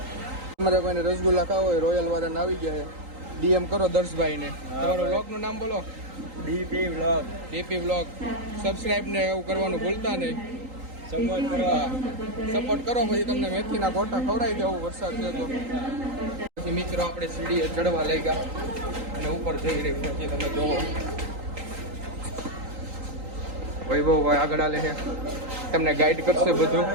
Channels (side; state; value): left; late; 3.8 ms